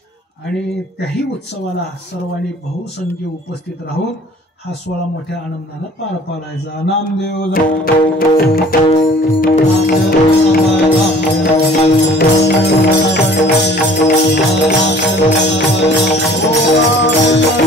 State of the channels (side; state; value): both; normal; correlation 0.51